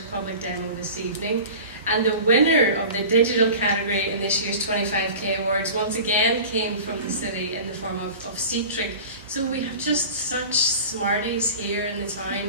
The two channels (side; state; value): both; inverted; correlation -0.37